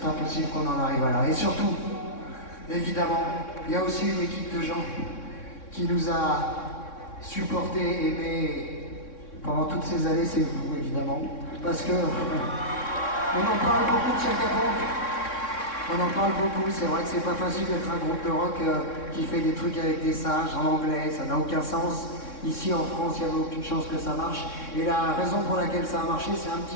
impossible qu'on en arrive à là. Et surtout, évidemment, il y a aussi une équipe de gens qui nous a supportés, aimés pendant toutes ces années, c'est vous, évidemment. Parce que on en parle beaucoup de Chaka Ponk. On en parle beaucoup, c'est vrai que c'est pas facile d'être un groupe de rock qui fait des trucs avec des singes en anglais, ça n'a aucun sens. Ici en France, il n'y avait aucune chance que ça marche. Et la raison pour laquelle ça a marché, c'est un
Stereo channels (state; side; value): late; right; 3.6 ms